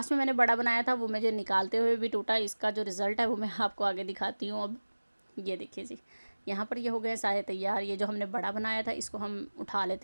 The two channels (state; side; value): inverted; both; correlation -1.00